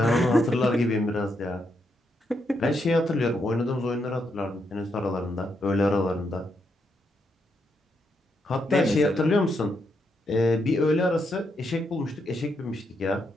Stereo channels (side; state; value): both; normal; correlation 0.79